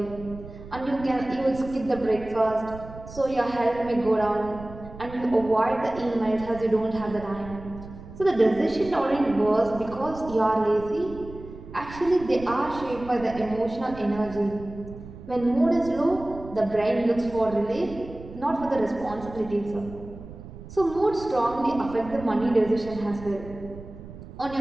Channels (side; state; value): right; noise; rumble, 15 dB below the sound